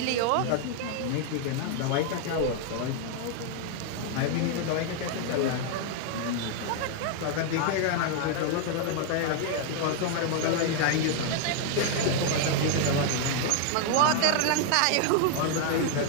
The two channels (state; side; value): different; both; correlation 0.00